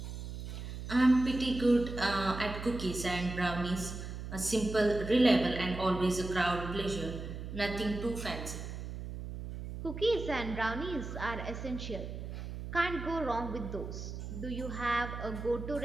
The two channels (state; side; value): noise; right; hum, 8 dB below the sound